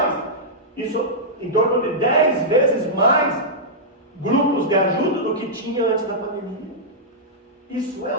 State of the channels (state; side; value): normal; both; correlation -0.11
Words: Isso em torno de 10 vezes mais grupos de ajuda do que tinha antes da pandemia. Isso